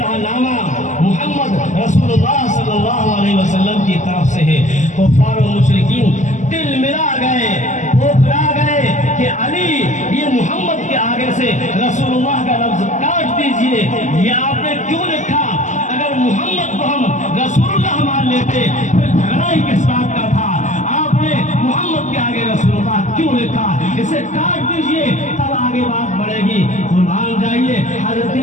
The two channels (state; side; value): late; right; 0.35 ms